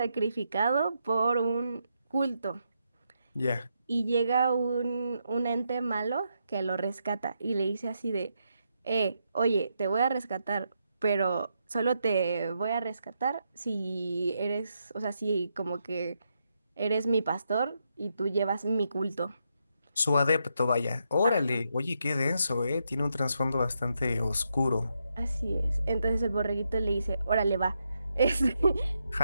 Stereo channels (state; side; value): inverted; both; correlation -0.81